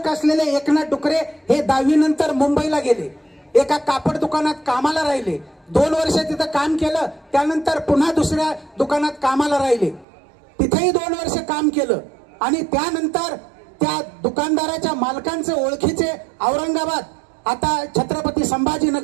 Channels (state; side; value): drops out; left; at 10.1 s